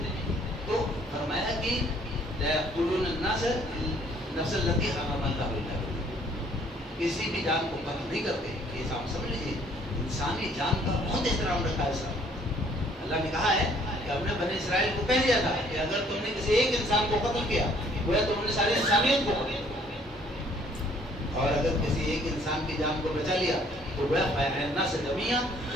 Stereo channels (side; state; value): both; normal; correlation 0.61